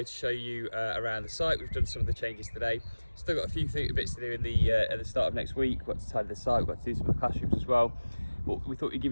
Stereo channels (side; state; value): both; inverted; correlation -1.00